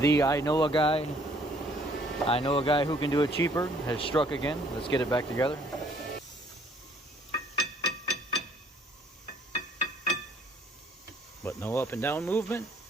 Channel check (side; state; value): both; normal; correlation 0.61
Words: I know a guy who can do it cheaper has struck again. Let's get it back together. But no up and down movement,